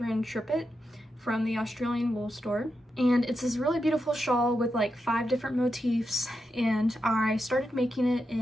Trippett from the Australian wool store, and it's this really beautiful shawl with like 5 different motifs, and I started making it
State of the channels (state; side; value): normal; both; correlation 0.87